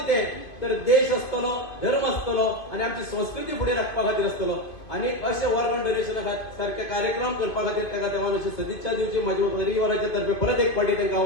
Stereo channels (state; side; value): late; right; 2.5 ms